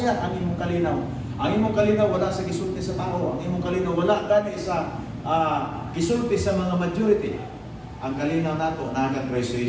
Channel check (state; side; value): identical; both; correlation 1.00